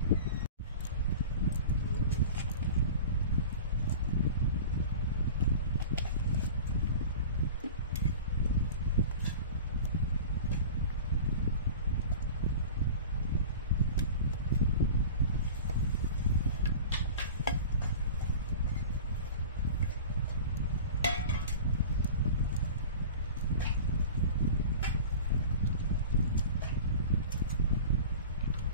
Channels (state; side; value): inverted; both; correlation -0.36